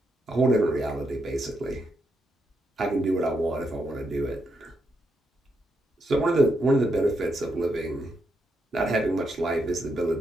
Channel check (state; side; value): normal; both; correlation 0.81